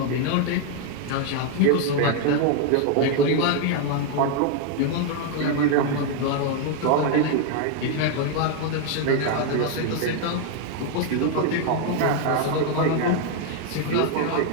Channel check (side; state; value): both; different; correlation 0.00